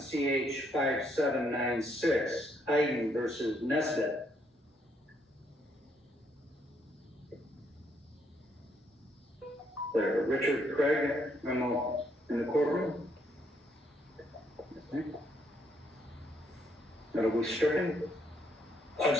5796, Hayden versus Nesbitt. There, Richard Craig, memo in the courtroom. Okay. That'll be stricken. I'm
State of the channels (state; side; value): normal; both; correlation 0.72